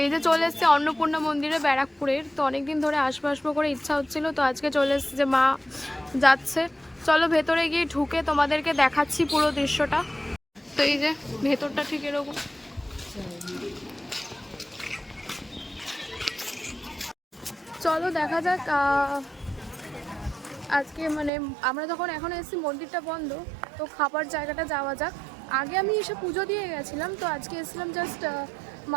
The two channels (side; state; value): left; drops out; at 21.3 s